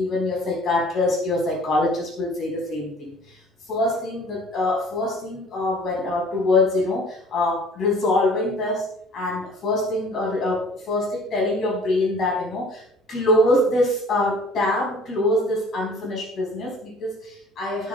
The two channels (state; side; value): normal; both; correlation 0.50